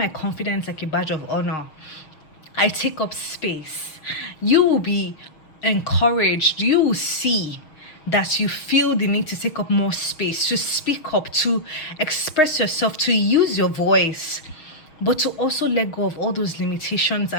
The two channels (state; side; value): late; right; 6.4 ms